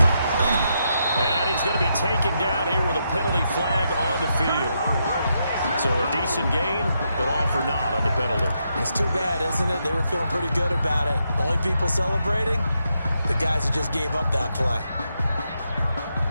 And he's going to be taken down here with a penalty flag on the field. So a decent gain, but all for naught on the penalty. It's too bad, isn't it? They were feeling pretty good about it. The only people celebrating, the guys who just gave up that play.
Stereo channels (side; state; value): both; inverted; correlation -0.81